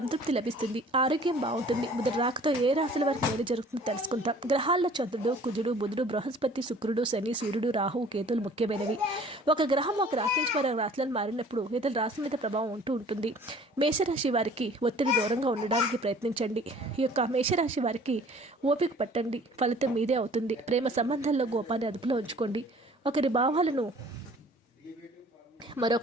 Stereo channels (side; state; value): both; normal; correlation 0.51